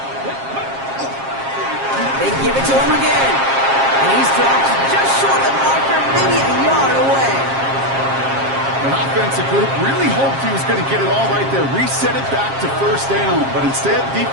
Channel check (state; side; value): late; left; 7.4 ms